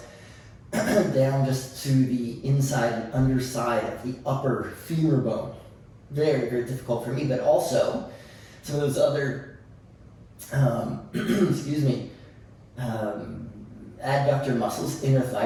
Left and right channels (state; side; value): identical; both; correlation 1.00